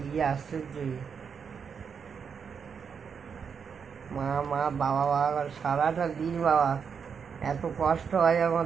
আশ্চর্য। মা মা বাবা বাবা সারাটা দিন বাবা, এত কষ্ট হয়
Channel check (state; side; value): quieter; left; 6.5 dB